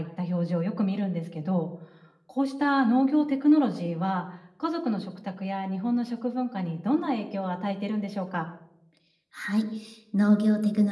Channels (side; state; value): both; identical; correlation 1.00